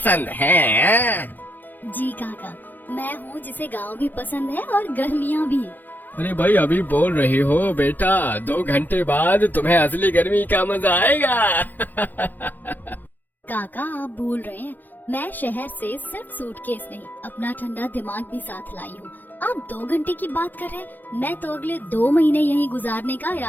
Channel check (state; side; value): late; right; 0.086 ms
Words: हैं। जी काका, मैं हूँ जिसे गांव भी पसंद है और गर्मियाँ भी। अरे भाई, अभी बोल रही हो बेटा, 2 घंटे बाद तुम्हें असली गर्मी का मजा आएगा। काका आप भूल रहे हैं, मैं शहर से सिर्फ सूटकेस नहीं, अपना ठंडा दिमाग भी साथ लाई हूँ। आप 2 घंटे की बात कर रहे हैं, मैं तो अगले 2 महीने यहीं गुजारने का